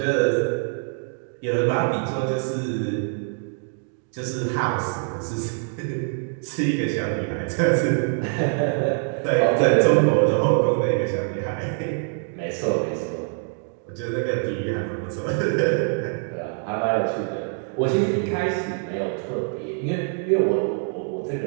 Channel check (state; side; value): silent; left; 56 dB below the other